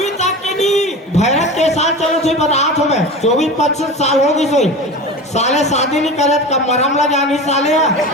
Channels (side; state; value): both; normal; correlation 0.31